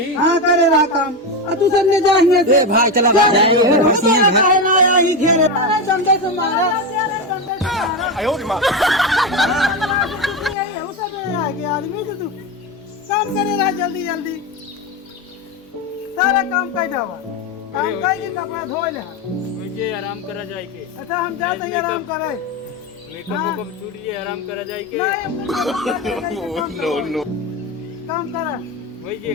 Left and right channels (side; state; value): both; normal; correlation 0.15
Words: हाँ करे रहा काम, और तू सब ने जाइए भाई चला आदमी से तू काम करे रहा जल्दी जल्दी, सारा काम कर जावा, काम कर कपड़ा धो ले। मुझे आराम करा जाए के, अच्छा हम जाते हैं आराम करे, मेकअप छूट गया आराम करा जाए के। काम करा वही ये